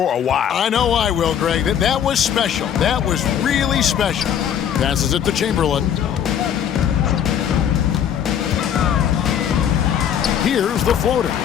a while. I know I will, Greg. That was special. That was really special. Passes it to Chamberlain. Here's the floater.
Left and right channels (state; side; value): quieter; right; 9.1 dB